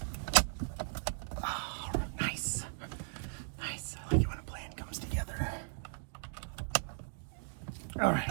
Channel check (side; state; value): left; silent; digital silence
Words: Oh, nice. Nice. I like it when a plan comes together. All